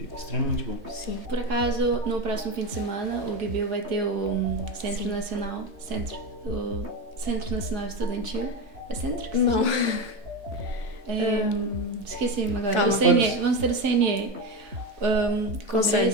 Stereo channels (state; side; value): late; left; 3.2 ms